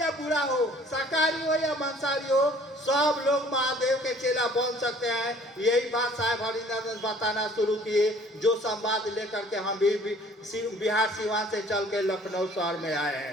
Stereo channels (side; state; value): both; normal; correlation 0.54